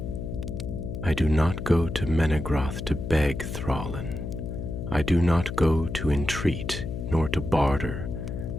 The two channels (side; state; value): left; noise; hum, 5 dB below the sound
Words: "I do not go to Menegroth to beg, Thrallin. I do not go to entreat, nor to barter,